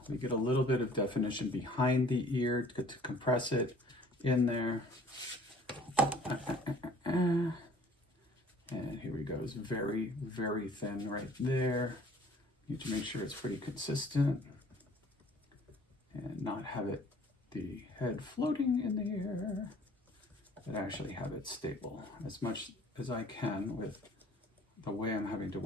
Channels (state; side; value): normal; both; correlation 0.53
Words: We get a little bit of definition behind the ear to compress it in there. And here we go. It's very, very thin right there. Need to make sure it's pretty consistent and not have it, the head floating in the air, but actually have it stable as much as I can with the way I'm having to